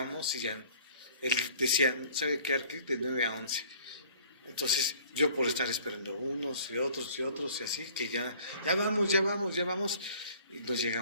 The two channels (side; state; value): both; inverted; correlation -0.53